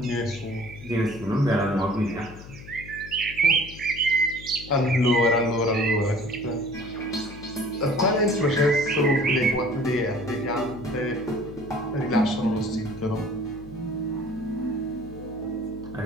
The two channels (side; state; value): left; noise; hum, 16 dB below the sound